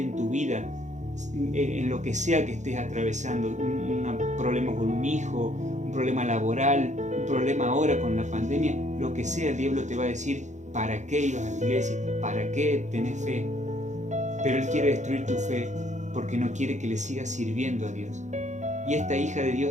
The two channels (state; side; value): late; left; 0.35 ms